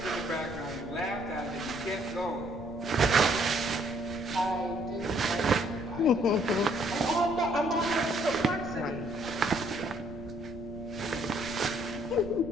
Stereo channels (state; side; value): noise; left; rumble, 14 dB below the sound